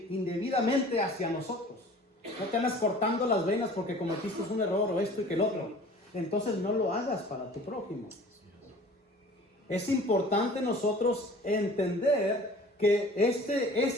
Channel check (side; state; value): both; normal; correlation 0.46